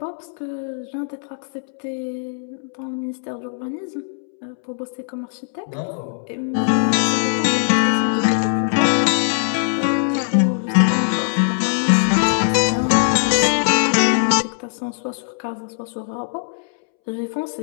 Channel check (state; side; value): silent; right; 65 dB below the other